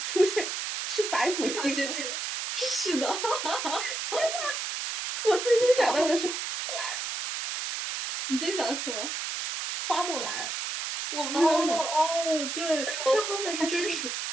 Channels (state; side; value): noise; right; hiss, 4 dB below the sound